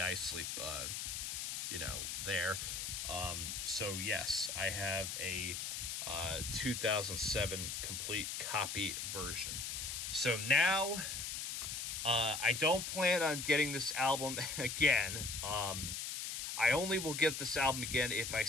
you know, there. So yes, I have a 2007 complete copy version. So now I don't plan on getting this album again. I only will get this album again if I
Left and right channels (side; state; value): left; noise; hiss, 4 dB below the sound